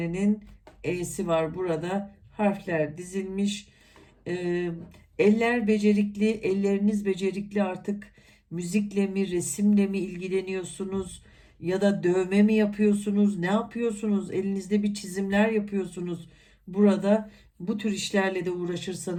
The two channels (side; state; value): both; identical; correlation 1.00